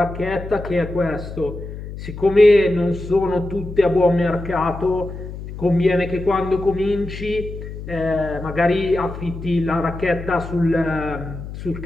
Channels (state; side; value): noise; left; hum, 10 dB below the sound